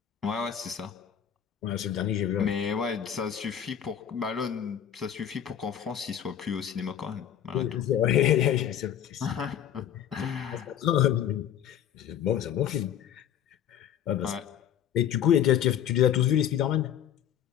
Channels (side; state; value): right; quieter; 9.8 dB